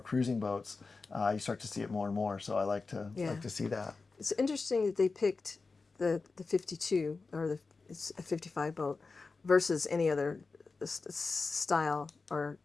cruising boats. You start to see it more and more, so I like to see that. It's interesting that they picked the 52 or it's a 55 boat versus any other style or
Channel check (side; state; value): right; quieter; 4.1 dB